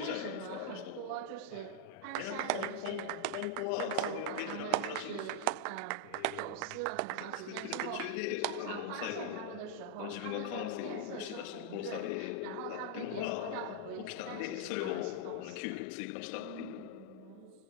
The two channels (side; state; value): both; different; correlation 0.00